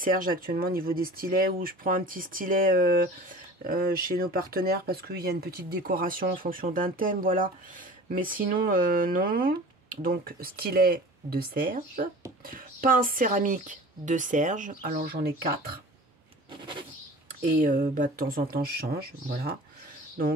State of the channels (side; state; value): both; normal; correlation 0.40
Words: actuellement au niveau des stylets, où je prends un petit stylet chez nos partenaires parce qu'il y a une petite décoration en fonction d'un thème, voilà. Mais sinon, non. Donc, stylet de Serge. Pince céramique de Serge. Alors, j'en ai 4. Et bah, de temps en temps, je change, voilà.